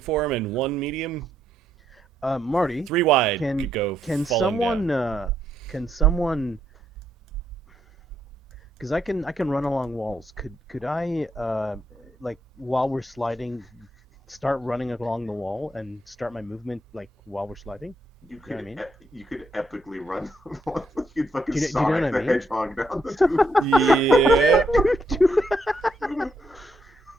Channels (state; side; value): normal; both; correlation 0.77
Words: form and 1 medium. Marty, 3 wide can could go can falling someone down. can someone? Because I can run along walls. Could I like while we're sliding, start running along the wall and start my movement like while we're sliding? You know could what I mean? you could epically run. You'd fucking Do you know Sonic what I the mean? Hedgehog down the tube. Yeah.